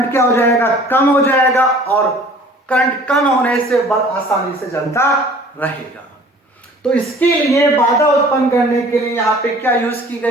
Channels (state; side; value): normal; both; correlation 0.50